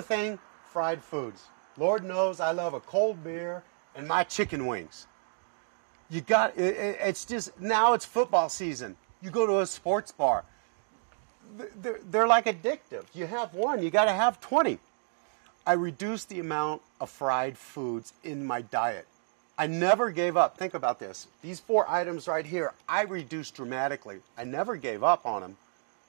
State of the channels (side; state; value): left; silent; digital silence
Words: fried foods. Lord knows I love a cold beer and my chicken wings. It's just, now it's football season. You go to a sports bar. They're like addictive. You have 1, you got to have 20. I reduced the amount of fried foods in my diet. I never gave up. Think about this. These 4 items right here, I reduced dramatically. I never gave up on them.